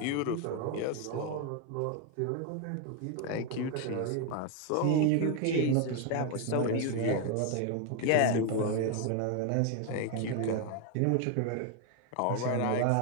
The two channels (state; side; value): different; both; correlation 0.01